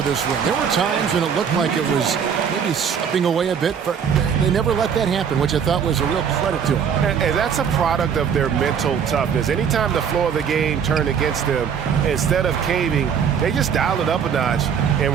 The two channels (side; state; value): left; quieter; 7.4 dB